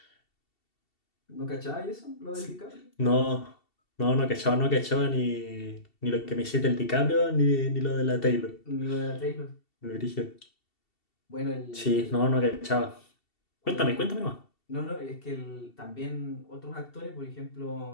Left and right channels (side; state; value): right; late; 2.7 ms